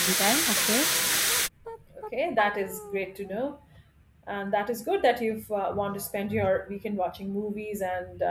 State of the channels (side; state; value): both; identical; correlation 1.00